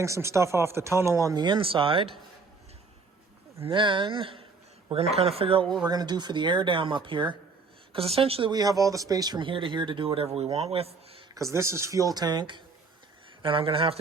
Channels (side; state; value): left; quieter; 4.4 dB